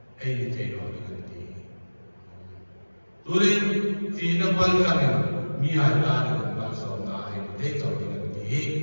Ni teno diganti. Turin fina bal jamlo, miya dan mal sona. Ni teno diganti.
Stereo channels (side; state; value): both; inverted; correlation -1.00